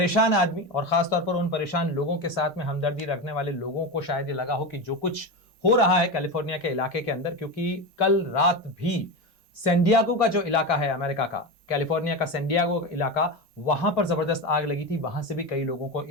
आदमी, और खासतौर पर उन परेशान लोगों के साथ में हमदर्दी रखने वाले लोगों को शायद ये लगा हो कि जो कुछ हो रहा है कैलिफोर्निया के इलाके के अंदर, क्योंकि कल रात भी सैन डिएगो का जो इलाका है अमेरिका का, कैलिफोर्निया का सैन डिएगो इलाका, वहां पर जबरदस्त आग लगी थी। वहां से भी कई लोगों को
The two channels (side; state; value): both; normal; correlation 0.19